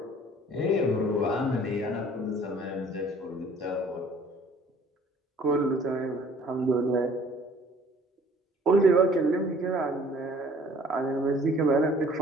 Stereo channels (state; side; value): normal; both; correlation 0.54